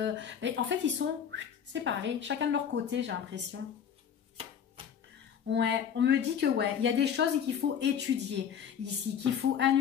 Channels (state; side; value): quieter; right; 8.1 dB